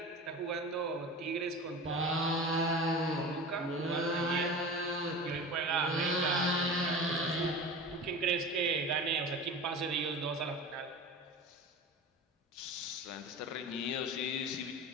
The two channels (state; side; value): normal; both; correlation 0.33